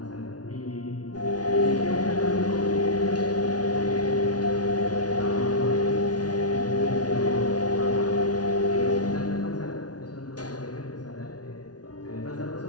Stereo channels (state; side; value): late; right; 0.69 ms